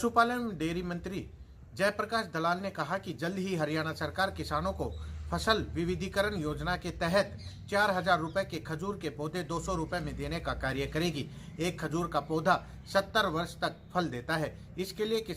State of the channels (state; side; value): identical; both; correlation 1.00